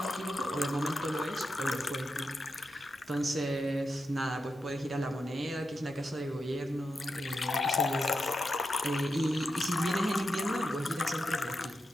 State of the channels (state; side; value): normal; both; correlation 0.88